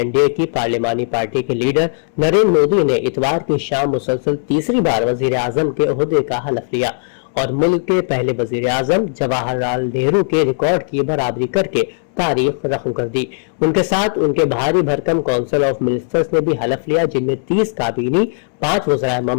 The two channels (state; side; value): silent; right; 68 dB below the other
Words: की पार्लिमानी पार्टी के लीडर नरेंद्र मोदी ने इतवार की शाम मुसलसल तीसरी बार वजीर आजम के ओहदे का हलफ लिया और मुल्क के पहले वजीर आजम जवाहरलाल नेहरू के रिकॉर्ड की बराबरी करके तारीख रकम कर दी। उनके साथ उनके भारी भरकम काउंसिल ऑफ मिनिस्टर्स ने भी हलफ लिया, जिनमें 30 काबीनी, 5 वज़राए